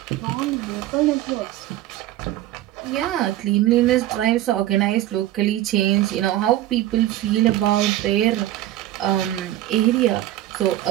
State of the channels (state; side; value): quieter; left; 14.3 dB